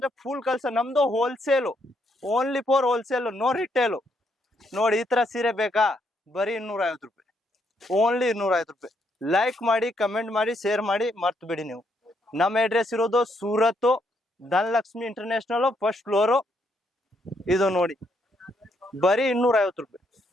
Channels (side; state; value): both; normal; correlation 0.74